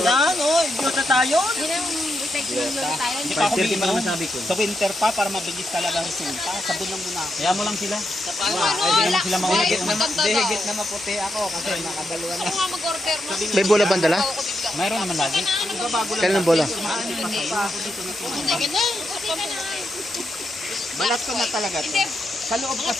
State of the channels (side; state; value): both; normal; correlation 0.83